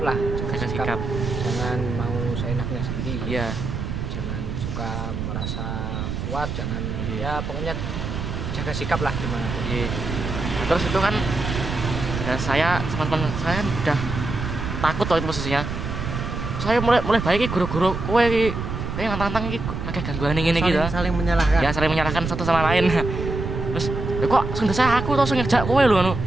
lah. Jaga sikap. Jangan mau seenaknya sendiri. Iya. Jangan suka merasa kuat. Jangan Iya. ya pokoknya jaga sikap lah gimana. Iya. Nah, terus itu kan ya saya teman-teman saya kan udah takut tuh itu posisinya. Saya mulai baik guru-guru kowe iki kayak nantang-nantang iki agak gangguan ngene iki to. Saling menyalahkan. Ya saling menyalahkan satu sama lain. Terus ya kok sing saya aku to sing ngejak kowe lho ngono.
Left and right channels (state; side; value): noise; right; rumble, 4 dB below the sound